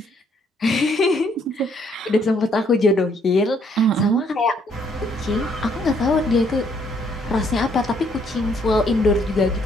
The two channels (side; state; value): both; normal; correlation 0.68